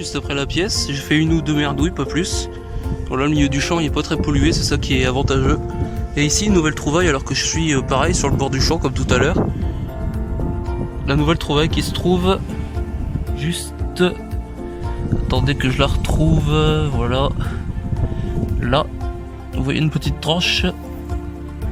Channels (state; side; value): identical; both; correlation 1.00